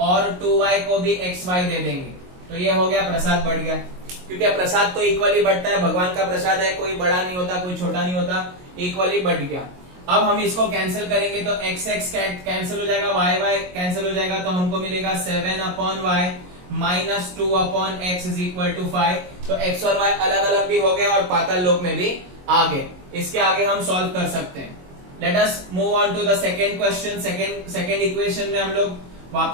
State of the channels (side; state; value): left; late; 22 ms